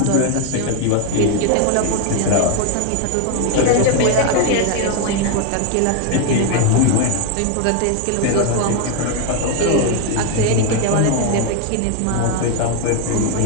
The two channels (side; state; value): both; different; correlation 0.01